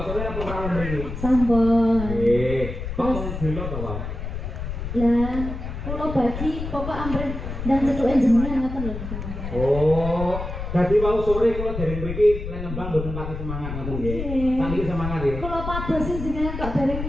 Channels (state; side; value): noise; left; rumble, 6 dB below the sound